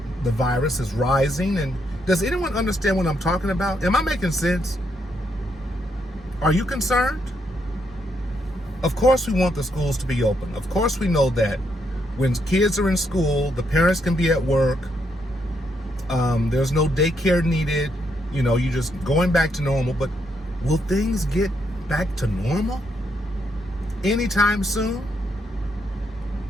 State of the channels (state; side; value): normal; both; correlation 0.77